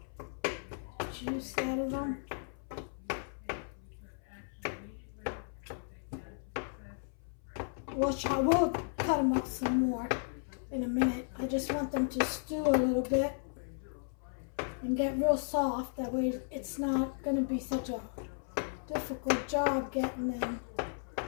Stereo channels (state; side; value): silent; right; 55 dB below the other